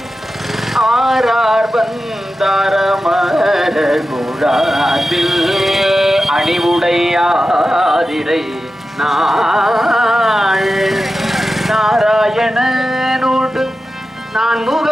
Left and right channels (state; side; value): normal; both; correlation 0.93